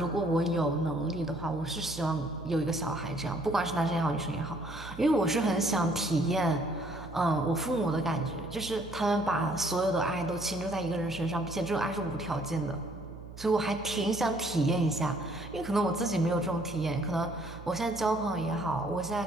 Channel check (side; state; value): right; noise; hum, 14 dB below the sound